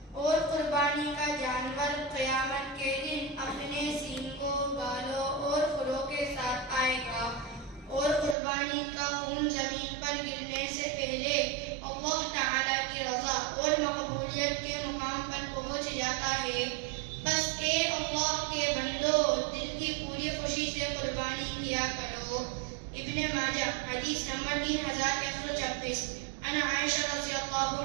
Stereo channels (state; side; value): drops out; left; at 8.3 s